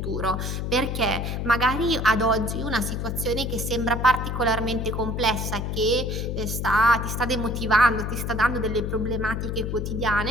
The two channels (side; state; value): left; noise; hum, 3 dB below the sound